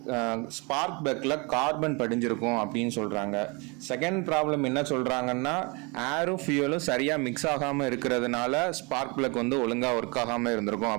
ஸ்பார்க் பிளக்கில் கார்பன் படிஞ்சிருக்கும் அப்படின்னு சொல்கிறாங்க. செகண்ட் ப்ராப்ளம் என்ன சொல்கிறாங்கன்னா ஏரும் ஃபியூலும் சரியாக மிக்ஸ் ஆகாமல் இருக்கிறதுனால ஸ்பார்க் பிளக் வந்து ஒழுங்காக ஒர்க் ஆகாமல் இருந்திருக்கும்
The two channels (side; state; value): left; quieter; 29.5 dB